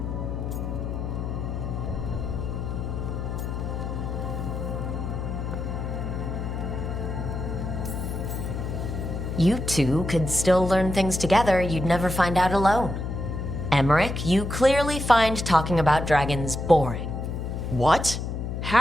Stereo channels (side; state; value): left; noise; hum, 4 dB below the sound